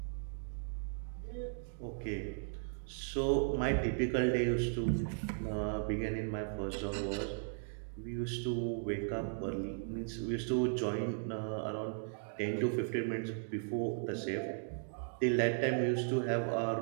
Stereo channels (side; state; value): left; silent; digital silence